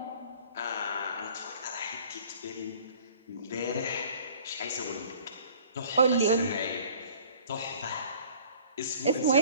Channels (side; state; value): both; inverted; correlation -0.50